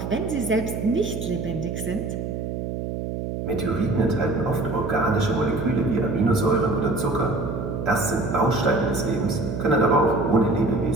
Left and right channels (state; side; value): noise; right; hum, 4 dB below the sound